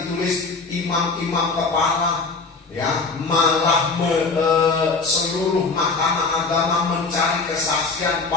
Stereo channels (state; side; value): quieter; right; 4.1 dB